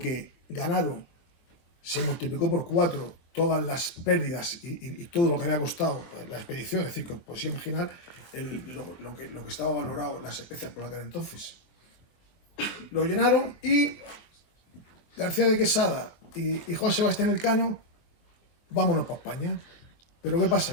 ganaron se multiplicó por 4 todas las pérdidas y todo lo que había costado la expedición. Es decir, que podéis imaginar lo que estaba valorado las especias por aquel entonces. Lo llenaron, y García de Quesada y Juan Sebastián Elcano, vámonos para España. Pero ¿qué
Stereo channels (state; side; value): late; right; 24 ms